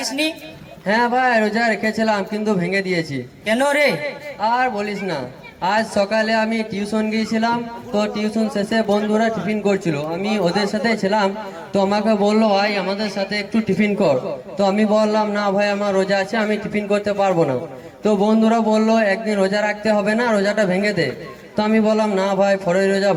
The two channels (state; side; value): identical; both; correlation 1.00